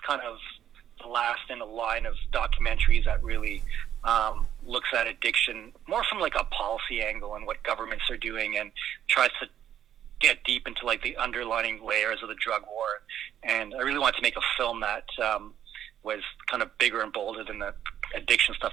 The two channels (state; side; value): quieter; left; 10.4 dB